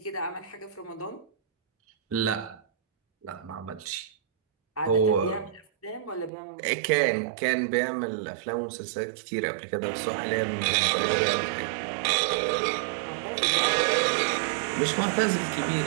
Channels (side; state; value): left; drops out; at 6.3 s